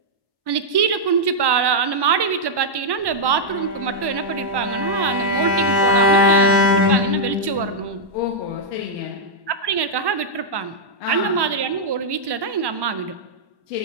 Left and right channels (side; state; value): left; late; 1.1 ms